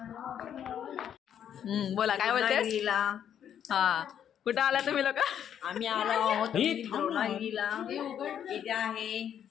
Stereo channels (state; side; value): quieter; right; 9.3 dB